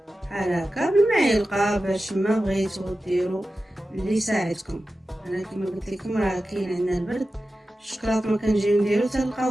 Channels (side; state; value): both; normal; correlation 0.93